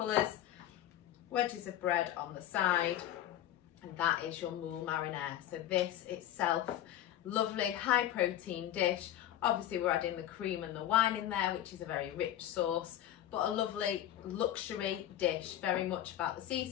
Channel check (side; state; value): right; quieter; 12.1 dB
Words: Wedges of bread on the side, and that is your Moules Marinière. So this itself, lovely high protein dish. Obviously we're adding the cream and the wine in there, which is a very rich sauce, but a lovely luxury dish, very much about the